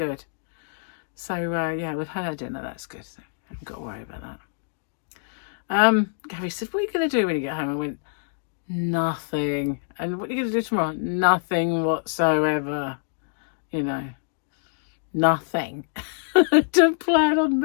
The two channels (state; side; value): silent; right; digital silence